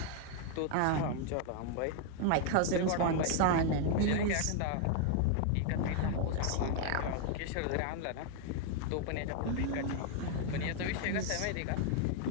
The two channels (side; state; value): both; different; correlation 0.00